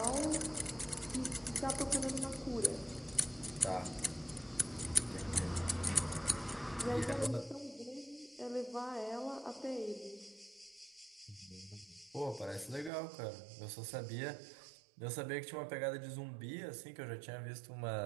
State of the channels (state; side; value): drops out; left; at 12.9 s